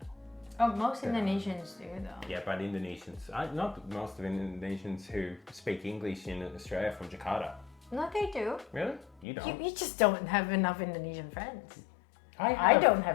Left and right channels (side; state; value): right; drops out; at 9.2 s